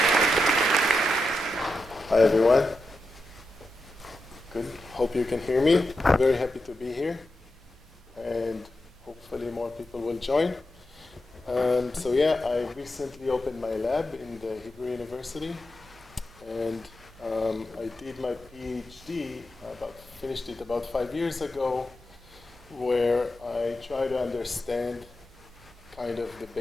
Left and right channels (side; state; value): both; normal; correlation 0.88